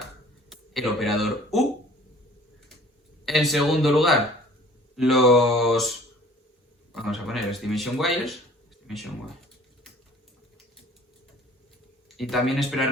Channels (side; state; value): both; normal; correlation 0.51